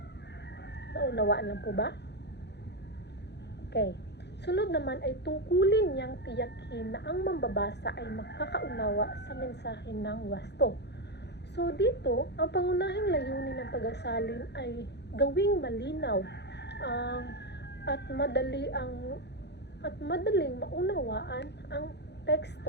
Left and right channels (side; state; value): right; late; 0.50 ms